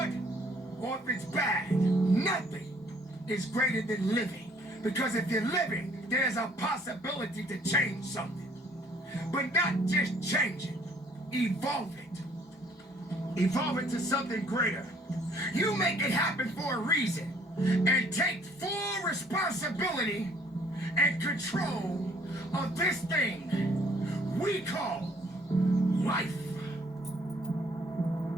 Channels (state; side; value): normal; both; correlation 0.60